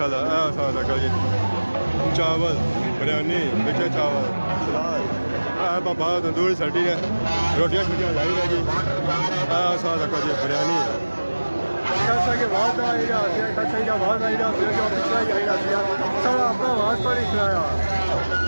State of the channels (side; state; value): both; inverted; correlation -1.00